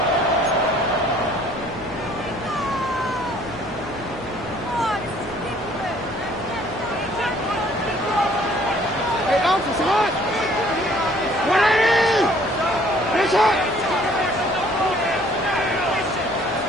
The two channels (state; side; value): noise; left; hum, 19 dB below the sound